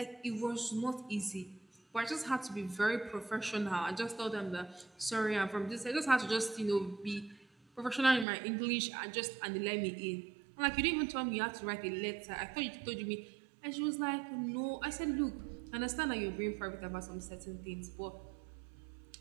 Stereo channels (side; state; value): left; drops out; at 8.2 s